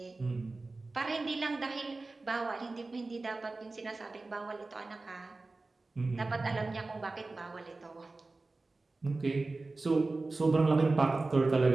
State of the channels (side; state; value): left; quieter; 3.4 dB